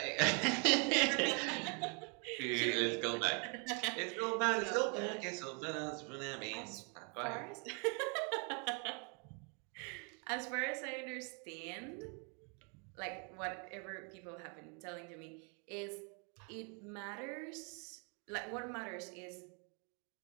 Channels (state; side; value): quieter; left; 36.7 dB